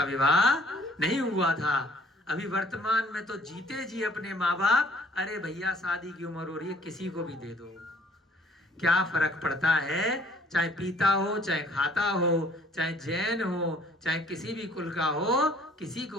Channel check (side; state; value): both; normal; correlation 0.58